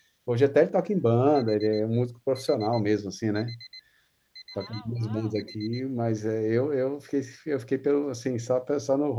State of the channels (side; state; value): both; identical; correlation 1.00